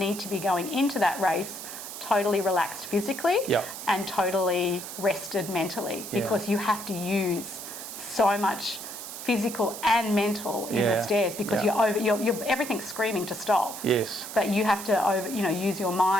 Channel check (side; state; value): right; noise; hiss, 10 dB below the sound